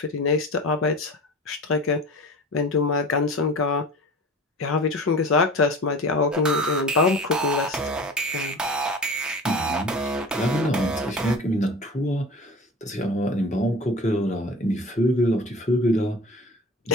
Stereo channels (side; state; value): both; normal; correlation 0.37